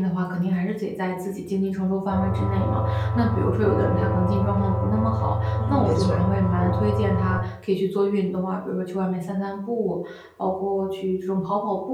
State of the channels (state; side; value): identical; both; correlation 1.00